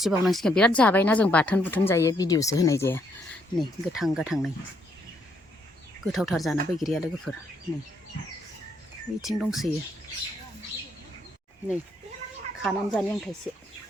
बिराद जाबायना जों बाथोन बुथोन जायो भिडिअसो होनाय जाया नै गोथां गोथां नै गोथावथार जाना बैग्रिया लोगोफोर नै बिथिं दंसोयो नै खानानै जानि आं थाइसे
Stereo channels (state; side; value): normal; both; correlation 0.72